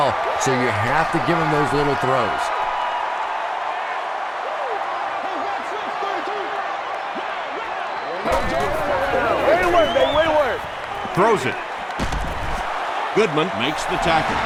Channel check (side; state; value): both; identical; correlation 1.00